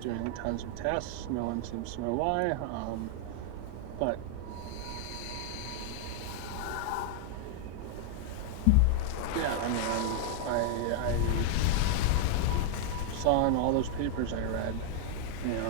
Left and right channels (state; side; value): different; both; correlation 0.00